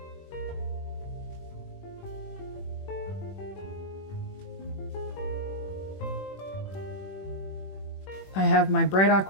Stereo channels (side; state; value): right; late; 21 ms